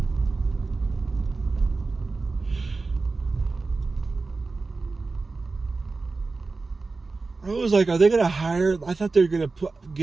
I was like, are they going to hire? I thought they were going to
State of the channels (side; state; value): left; quieter; 3.8 dB